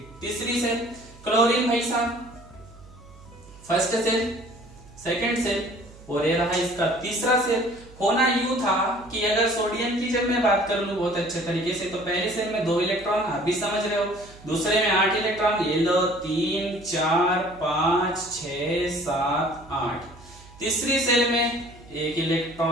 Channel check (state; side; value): noise; right; hum, 22 dB below the sound